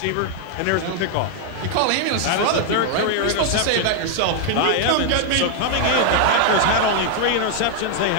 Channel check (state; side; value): different; both; correlation 0.00